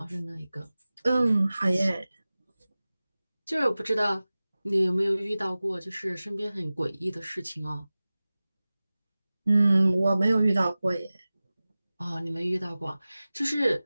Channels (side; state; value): both; inverted; correlation -0.97